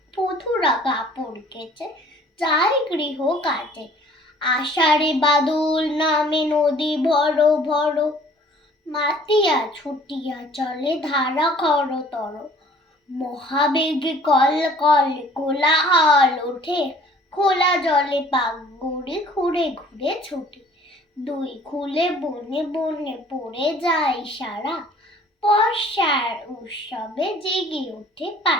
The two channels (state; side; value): normal; both; correlation 0.53